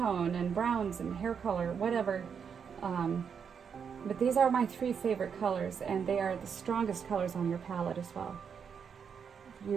and browns and hair color, whatever. But these are my three favorite colors, and they are the strongest colors on your palette as well.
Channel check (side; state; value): left; quieter; 6.9 dB